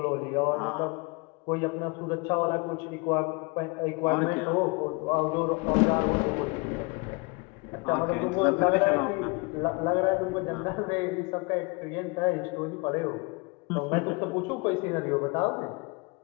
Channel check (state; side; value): quieter; right; 28.8 dB